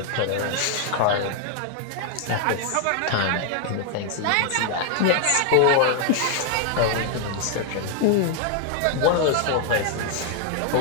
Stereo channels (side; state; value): both; different; correlation 0.00